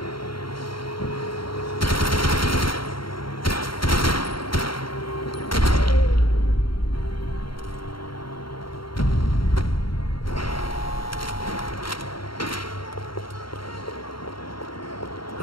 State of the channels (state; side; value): late; right; 0.73 ms